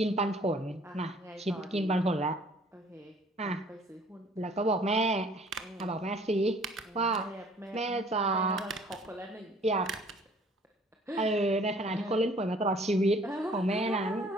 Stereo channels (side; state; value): both; normal; correlation 0.55